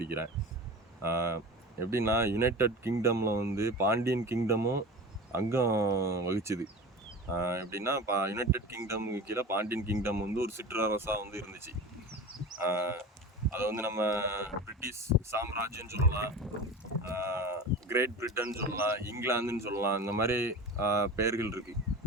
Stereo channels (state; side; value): normal; both; correlation 0.33